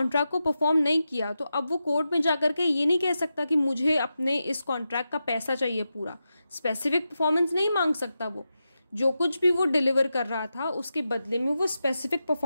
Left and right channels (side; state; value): both; inverted; correlation -0.90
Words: को परफॉर्म नहीं किया। तो अब वो कोर्ट में जाकर के ये नहीं कह सकता कि मुझे अपने इस कॉन्ट्रैक्ट का पैसा चाहिए पूरा। स्पेसिफिक परफॉर्मेंस नहीं मांग सकता वो, जो कुछ भी वो डिलीवर कर रहा था उसके बदले में वो स्पेसिफिक